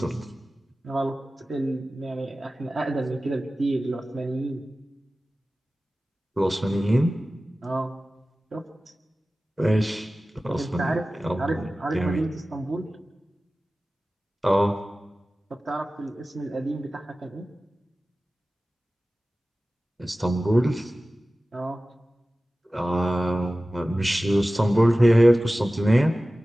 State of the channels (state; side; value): normal; both; correlation 0.96